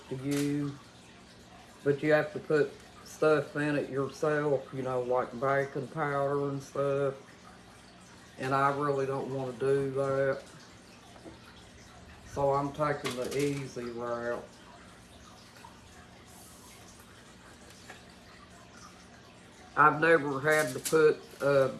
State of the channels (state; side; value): identical; both; correlation 1.00